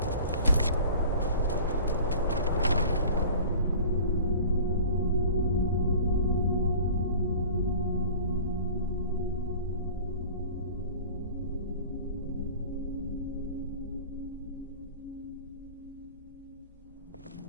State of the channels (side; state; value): both; inverted; correlation -0.43